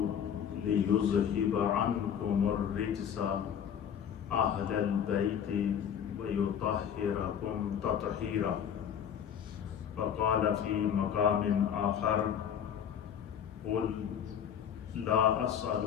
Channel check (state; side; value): quieter; right; 8.6 dB